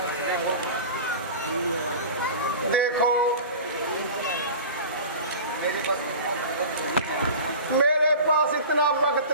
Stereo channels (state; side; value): inverted; both; correlation -0.35